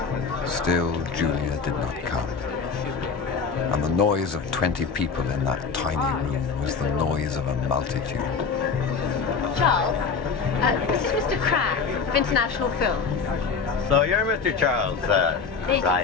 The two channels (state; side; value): quieter; right; 5.4 dB